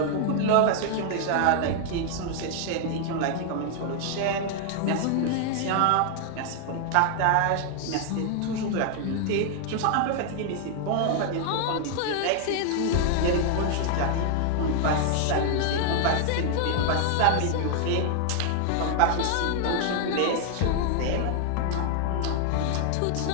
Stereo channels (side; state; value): both; different; correlation 0.00